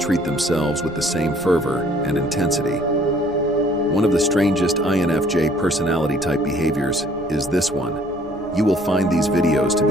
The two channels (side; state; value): left; noise; rumble, 22 dB below the sound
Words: themselves with the same fervor and intensity. One of the strangest INFJ personality type behaviors is this one. You will find these videos to